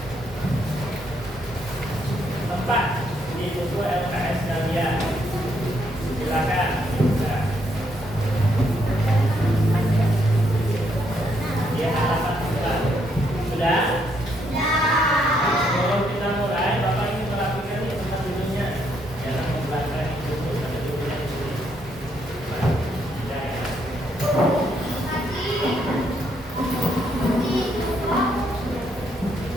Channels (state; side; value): normal; both; correlation 0.74